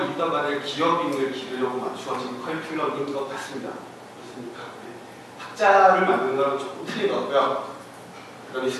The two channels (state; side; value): identical; both; correlation 1.00